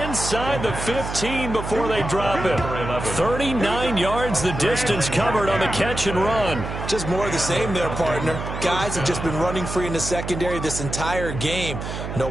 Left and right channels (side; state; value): right; noise; hum, 7 dB below the sound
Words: inside the 15 before they drop it. 39 yards the distance covered on the catch and run. Just more of the same there, partner. Guys have just been running free in the secondary this entire game. No